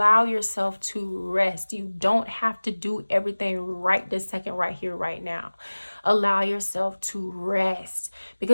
yourself to rest. You don't have to do everything right this second, right here, right now. Allow yourself to rest,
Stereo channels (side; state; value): both; inverted; correlation -1.00